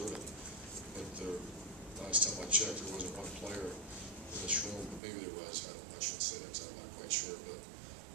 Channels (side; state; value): left; drops out; at 5.0 s